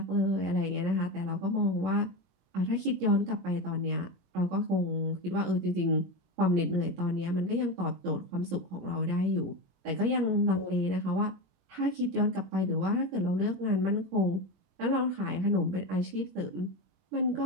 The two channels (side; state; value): left; late; 21 ms